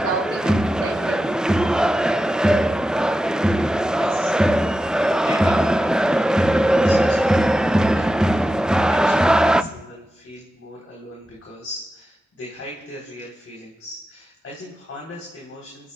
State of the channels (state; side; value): normal; both; correlation 0.92